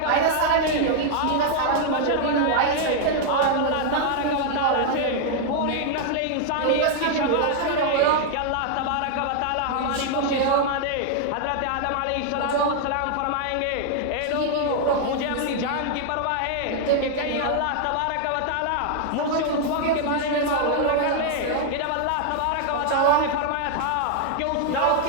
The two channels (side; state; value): both; different; correlation 0.00